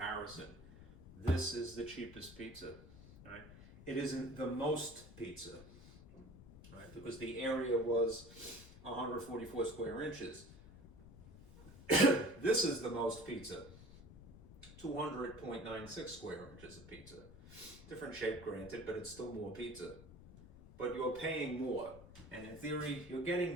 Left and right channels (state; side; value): noise; left; rumble, 18 dB below the sound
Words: This is the cheapest pizza, right? It isn't the most pizza, right? Because the area was 144 square inches. This is the most pizza, 200.96 square inches of pizza. Different shape, granted, but it's still more pizza. But you're paying more, and in theory, you're